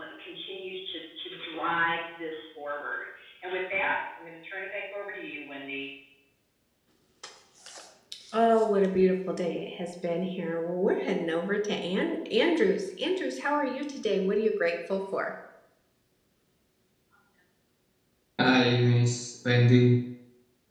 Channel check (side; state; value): both; identical; correlation 1.00